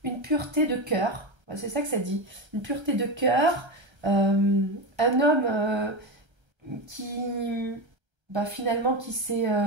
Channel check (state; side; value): late; left; 1.3 ms